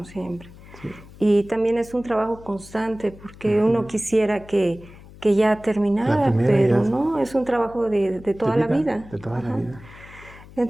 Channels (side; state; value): left; noise; hum, 20 dB below the sound